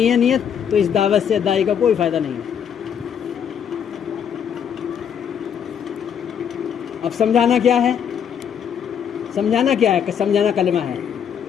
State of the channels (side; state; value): right; quieter; 8.2 dB